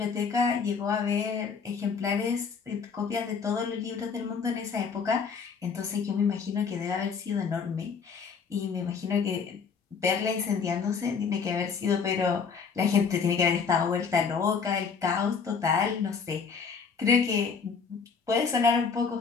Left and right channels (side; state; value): right; quieter; 5.8 dB